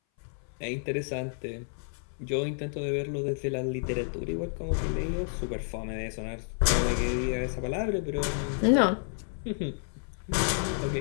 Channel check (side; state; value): right; silent; 57 dB below the other